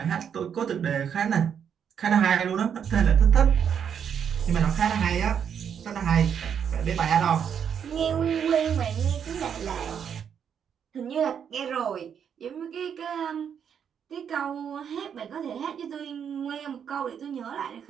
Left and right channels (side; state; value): left; quieter; 7.9 dB